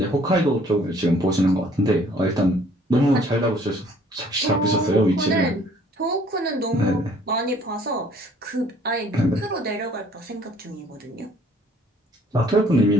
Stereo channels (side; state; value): both; normal; correlation 0.58